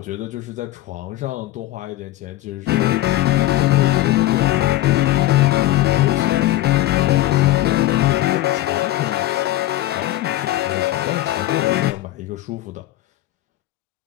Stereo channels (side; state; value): right; quieter; 15.7 dB